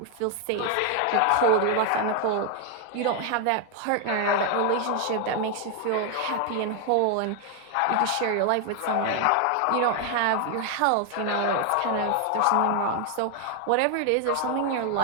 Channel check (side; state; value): both; different; correlation 0.00